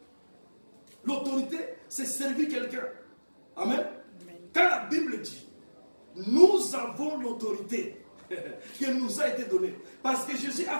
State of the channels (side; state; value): both; inverted; correlation -1.00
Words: L'autorité, c'est servir quelqu'un. Amen. Quand la Bible dit, nous avons l'autorité qui nous a été donnée. Parce que Jésus a